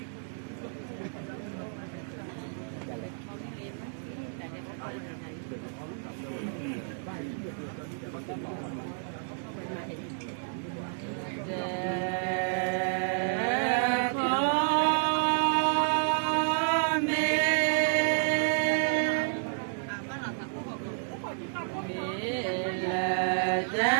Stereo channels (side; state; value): left; silent; digital silence